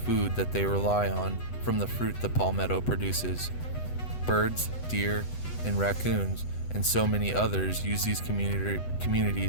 that they rely on from the fruit the palmetto produces. Birds, deer, and raccoons, and so many others use these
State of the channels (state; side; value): late; right; 8.0 ms